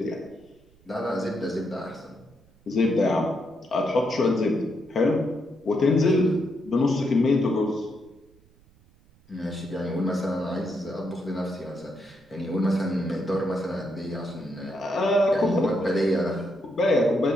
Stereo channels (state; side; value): noise; right; rumble, 30 dB below the sound